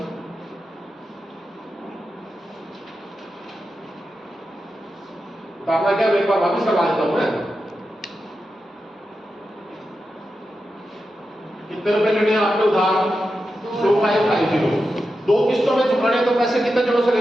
तो आपका क्या एक बार वापस करवा देता हूं मैं कितने रुपए लेने हैं आपके उधार 2550 दो किस्तों में चुकाने तो पैसे कितने जनों से ले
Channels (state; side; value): normal; both; correlation 0.90